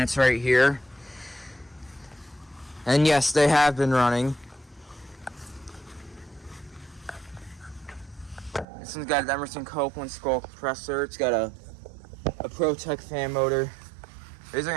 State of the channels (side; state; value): left; drops out; at 8.7 s